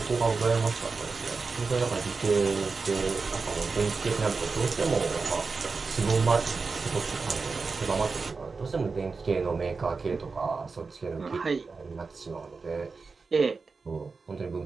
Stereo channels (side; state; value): left; quieter; 4.5 dB